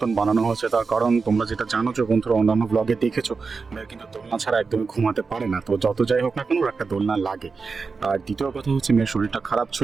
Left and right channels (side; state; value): left; quieter; 4.7 dB